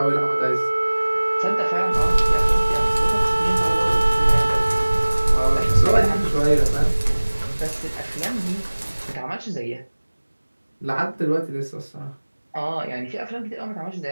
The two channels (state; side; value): inverted; both; correlation -1.00